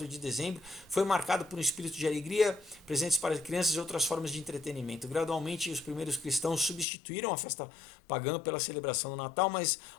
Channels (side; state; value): right; drops out; at 6.9 s